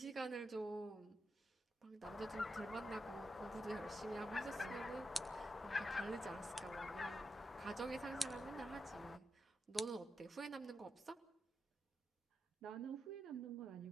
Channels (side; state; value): both; normal; correlation 0.87